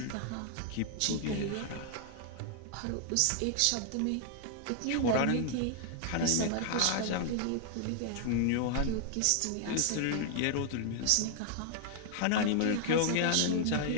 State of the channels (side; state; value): both; different; correlation 0.00